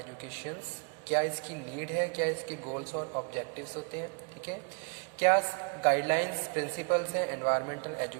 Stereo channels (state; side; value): quieter; left; 38.7 dB